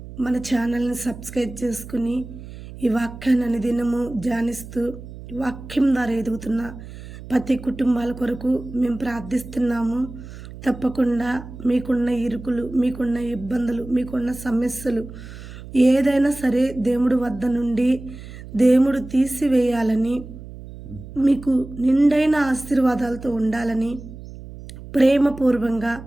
మన ఛానల్ని సబ్స్క్రైబ్ చేసుకుని ఈ వాక్యాన్ని అనుదినము ధ్యానిస్తూ వాక్యం ద్వారా ఎదుగుతున్న ప్రతి కుటుంబాల కొరకు మేము ప్రార్థిస్తున్నాము. తప్పకుండా మీకున్న ఇరుకులు, మీకున్న ఇబ్బందులు, మీకున్న సమస్యలు ఏదైనా సరే దేవుడి వద్ద నుండి దేవుడు తీసివేయాలని, మీకు నిండైన ఆశీర్వాదాలతో ఉండాలని ప్రేమపూర్వంగా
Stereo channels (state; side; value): noise; right; hum, 14 dB below the sound